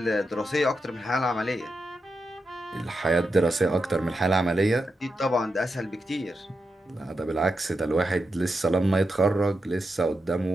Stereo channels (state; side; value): normal; both; correlation 0.87